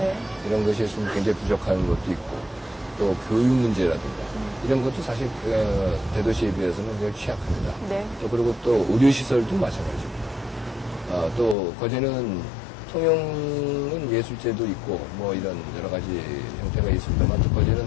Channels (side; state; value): right; drops out; at 11.6 s